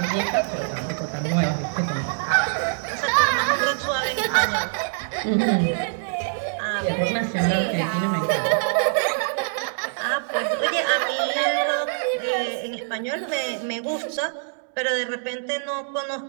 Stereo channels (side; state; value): left; silent; digital silence